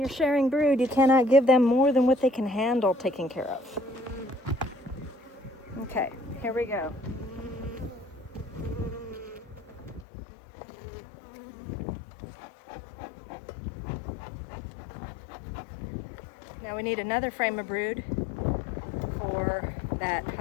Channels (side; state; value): right; drops out; at 10.1 s